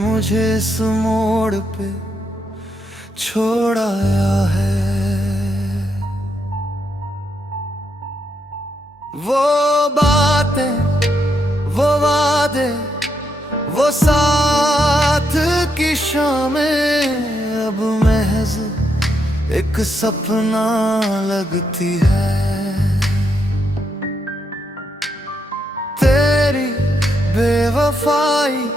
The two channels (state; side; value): normal; both; correlation 0.79